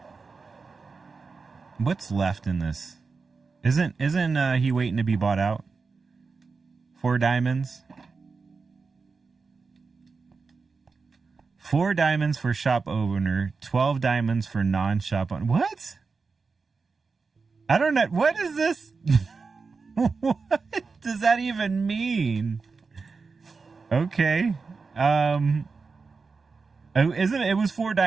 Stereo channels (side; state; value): left; quieter; 4.6 dB